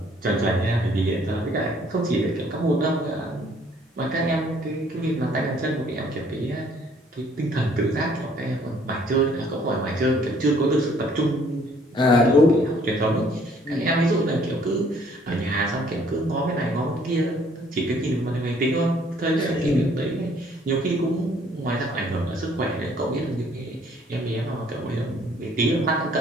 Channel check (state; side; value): normal; both; correlation 0.61